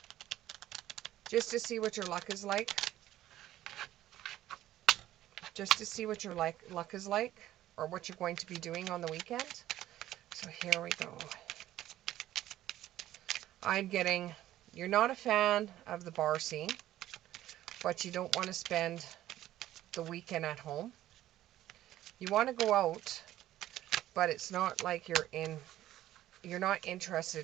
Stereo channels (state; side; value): quieter; left; 13.8 dB